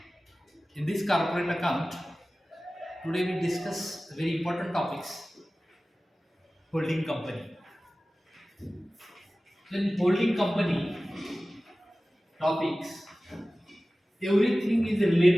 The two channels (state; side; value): normal; both; correlation 0.97